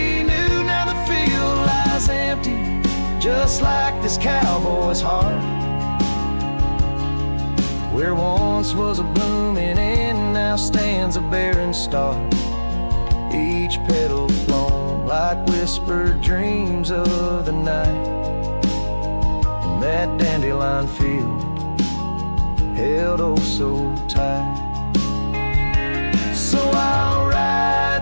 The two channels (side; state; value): both; inverted; correlation -1.00